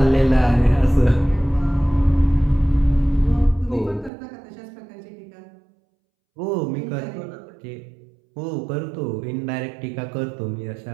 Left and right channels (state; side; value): drops out; left; at 4.1 s